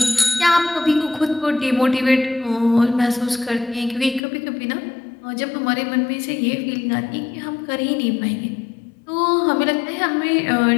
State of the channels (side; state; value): right; drops out; at 4.2 s